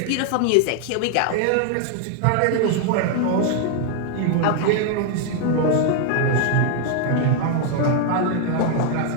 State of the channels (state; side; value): different; both; correlation 0.00